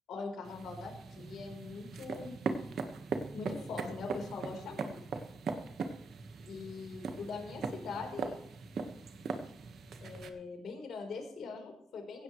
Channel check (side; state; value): both; normal; correlation 0.77